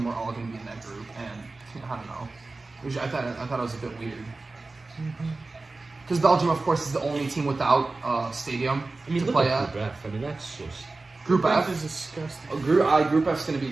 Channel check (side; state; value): left; quieter; 3.4 dB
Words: were all going to be in that group, and I don't know, which I thought it was a bit weird. Because Belgium, of course, is the only team without stadium I mean, to look play at at. Group F. I mean, that's just Group F. is disgusting. Group F is going to be